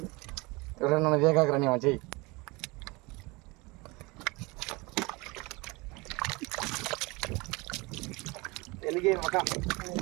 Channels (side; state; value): left; quieter; 25.3 dB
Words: నన్ను వేగాకరని చెయ్యి. ఎలిగే మక